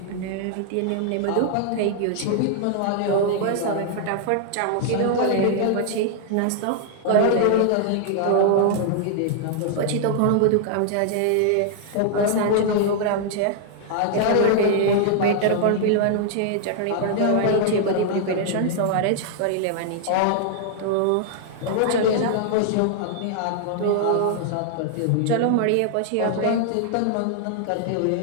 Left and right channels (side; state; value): both; different; correlation -0.01